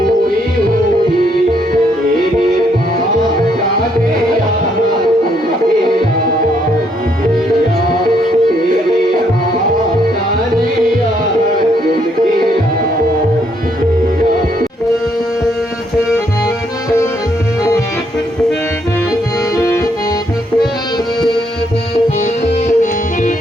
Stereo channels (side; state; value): both; normal; correlation 0.72